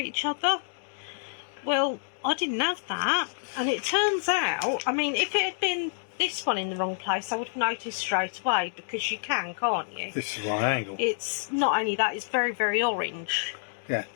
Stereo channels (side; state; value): right; silent; digital silence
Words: other. Well, I didn't have that, and it turns out, I mean, if it had been this one in the wrong place, I would have noticed straight away, because you can, can't you? This is right angle. It's not only that, it's very, very orange. Yeah.